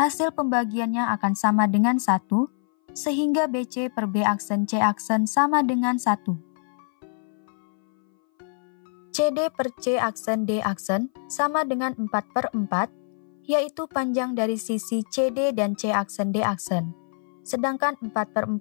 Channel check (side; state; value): right; silent; 58 dB below the other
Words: pembagiannya akan sama dengan 1, sehingga BC per B aksen C aksen sama dengan 1. CD per C aksen D aksen sama dengan 4/4, yaitu panjang dari sisi CD dan C aksen D aksen, sedangkan